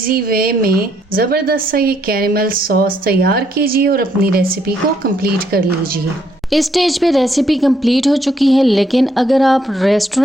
वे में ज़बरदस्त सा ये कैरेमल सॉस तैयार कीजिए और अपनी रेसिपी को कंप्लीट कर लीजिए। इस स्टेज पे रेसिपी कंप्लीट हो चुकी है, लेकिन अगर आप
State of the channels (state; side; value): normal; both; correlation 0.71